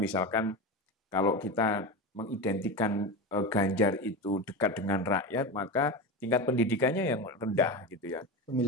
kalau kita mengidentikan Ganjar itu dekat dengan rakyat, maka tingkat pendidikannya yang rendah gitu ya.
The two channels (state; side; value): normal; both; correlation 0.23